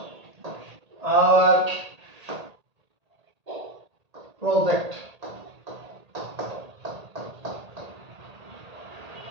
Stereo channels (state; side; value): late; left; 1.8 ms